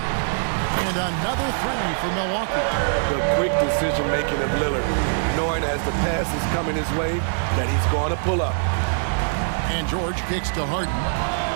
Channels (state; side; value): silent; left; 60 dB below the other